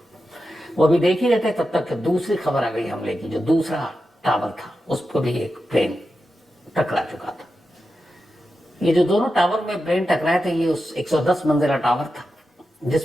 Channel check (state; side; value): normal; both; correlation 0.90